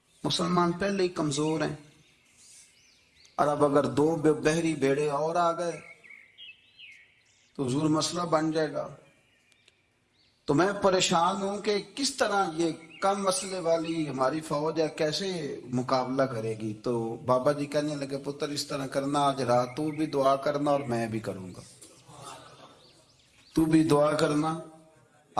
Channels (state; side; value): identical; both; correlation 1.00